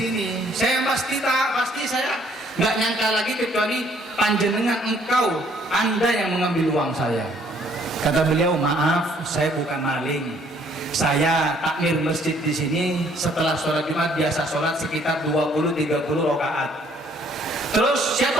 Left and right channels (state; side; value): normal; both; correlation 0.63